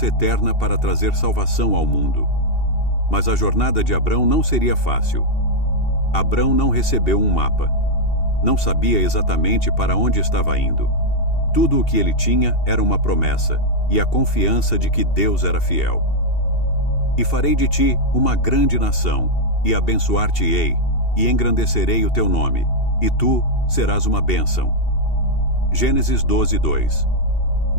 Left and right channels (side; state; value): right; late; 2.7 ms